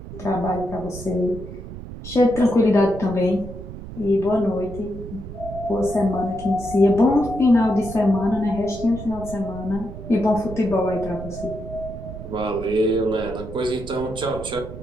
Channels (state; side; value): noise; right; rumble, 11 dB below the sound